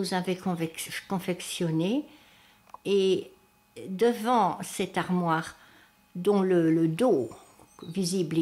avait confectionnée, et devant cette armoire, dont le dos visible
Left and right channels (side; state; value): both; identical; correlation 1.00